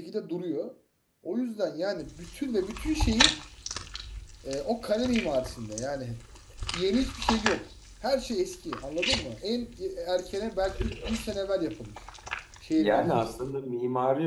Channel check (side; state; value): both; identical; correlation 1.00